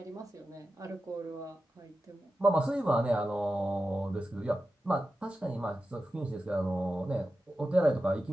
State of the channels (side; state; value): both; normal; correlation 0.91